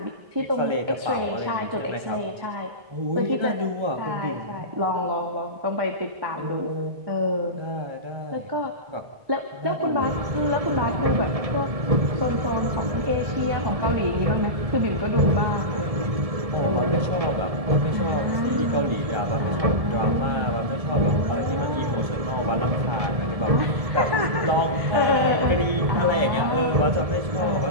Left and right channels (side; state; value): left; late; 1.7 ms